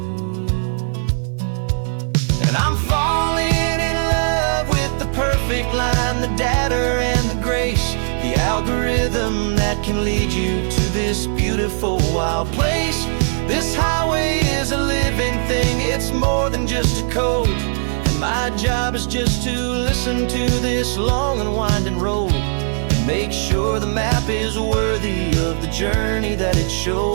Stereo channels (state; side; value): silent; left; digital silence